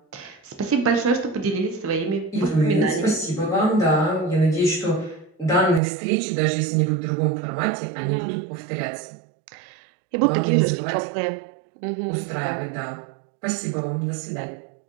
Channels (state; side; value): drops out; left; at 5.8 s